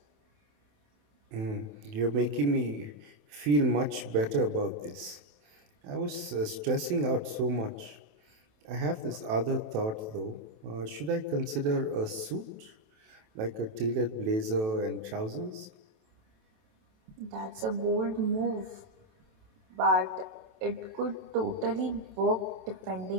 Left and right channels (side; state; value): left; late; 28 ms